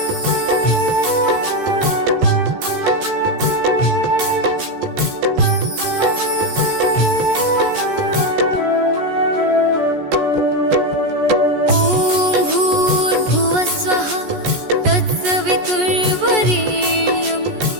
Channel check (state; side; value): late; left; 14 ms